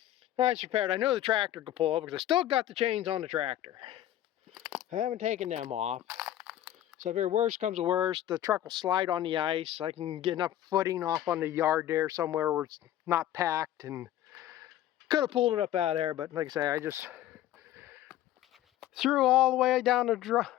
That's prepared. I know the tractor could pull over because I still got the chains on the tractor. I haven't taken them off. So if worst comes to worst, the truck will slide on the ice. I can get enough footing off on the yard there somewhere where it's not packed, and could have pulled it up out of there, but like I say, I just threw all the way down the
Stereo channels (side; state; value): right; quieter; 12.8 dB